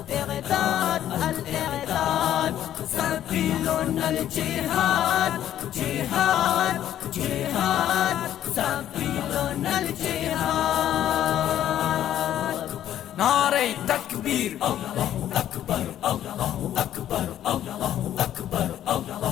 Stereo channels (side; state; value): right; quieter; 11.5 dB